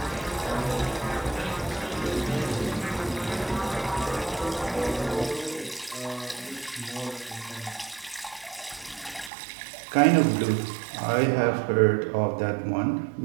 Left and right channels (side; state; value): left; drops out; at 9.3 s